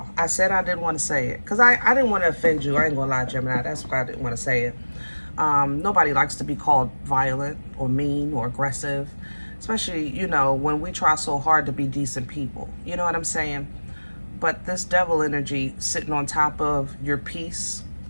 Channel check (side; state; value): both; inverted; correlation -1.00